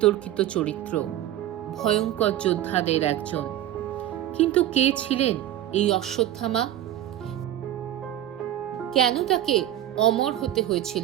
চরিত্র, ভয়ঙ্কর যোদ্ধাদের একজন। কিন্তু কে ছিলেন এই অশ্বত্থামা? কেন তাকে অমর হতে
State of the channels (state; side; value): quieter; left; 12.8 dB